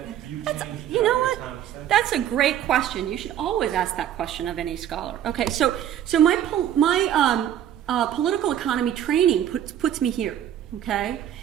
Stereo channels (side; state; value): left; quieter; 10.7 dB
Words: view changed? You know what? That's a great question. You should always ask that question of any scholar. Okay, so my political economy training puts me here. Okay,